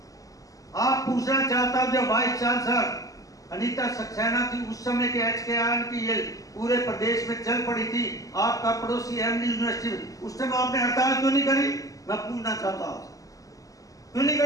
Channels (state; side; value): late; right; 0.17 ms